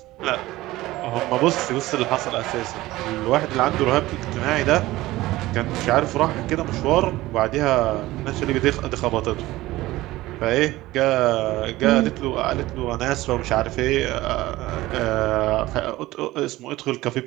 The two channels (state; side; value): quieter; left; 17.6 dB